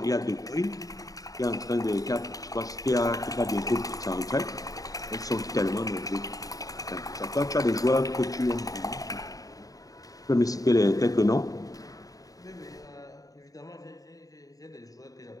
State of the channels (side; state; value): right; late; 0.17 ms